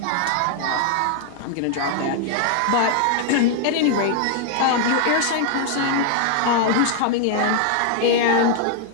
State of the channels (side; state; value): both; different; correlation 0.00